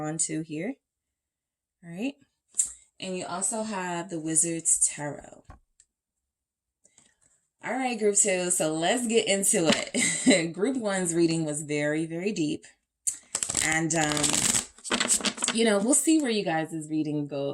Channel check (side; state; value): both; identical; correlation 1.00